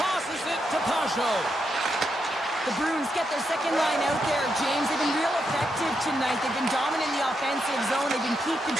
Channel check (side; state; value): both; normal; correlation 0.82